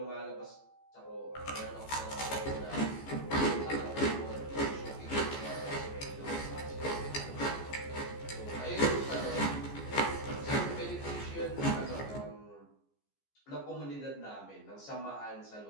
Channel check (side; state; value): right; late; 14 ms